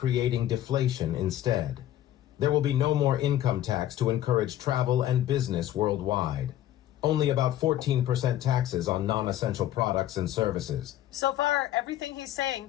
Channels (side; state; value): right; quieter; 12.7 dB